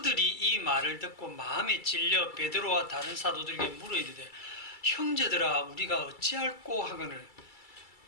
이 말을 듣고 마음에 찔려 베드로와 다른 사도들에게 물어 이르되 형제들아 우리가 어찌할꼬 하거늘,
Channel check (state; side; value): late; right; 2.3 ms